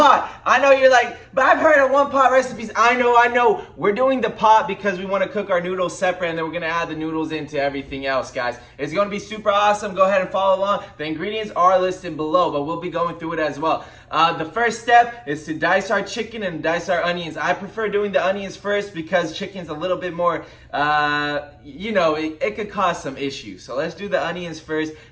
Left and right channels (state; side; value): identical; both; correlation 1.00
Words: I know you're like, but I've heard of one pot recipes. I know. We're doing the pot because we want to cook our noodles separate and then we're going to add the noodles into everything else, guys. It's going to be super awesome. Go ahead and follow along. The ingredients are listed below, but we'll be going through it as well. The first step is to dice our chicken and dice our onions. I prefer doing the onions first because chicken's a little bit more, it could cause some issues. So let's do the onions first.